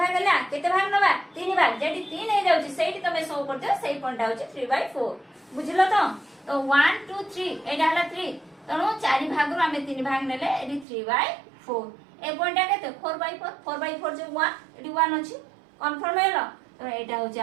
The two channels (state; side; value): drops out; left; at 10.9 s